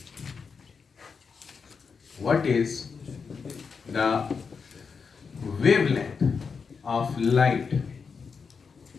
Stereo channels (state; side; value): quieter; right; 5.5 dB